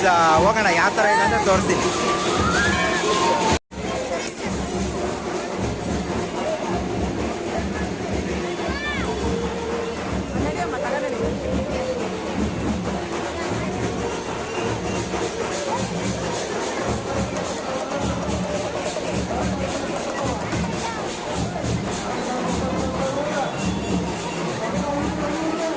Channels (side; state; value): both; identical; correlation 1.00